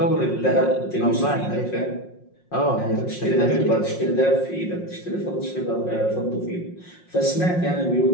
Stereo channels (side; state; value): right; late; 5.6 ms